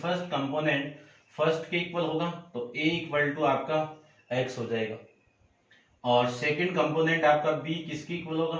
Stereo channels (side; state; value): both; identical; correlation 1.00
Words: कंपोनेंट फर्स्ट के इक्वल होगा तो a इक्वल टू आपका x हो जाएगा, और सेकंड कंपोनेंट आपका b किसकी इक्वल